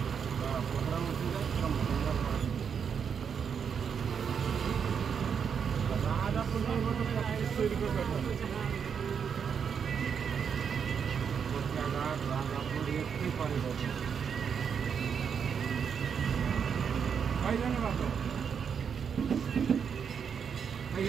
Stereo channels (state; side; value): quieter; left; 7.0 dB